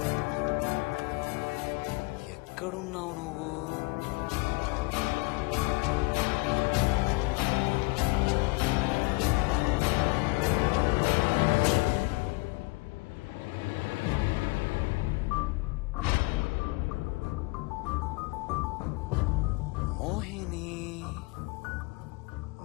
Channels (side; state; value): right; quieter; 25.8 dB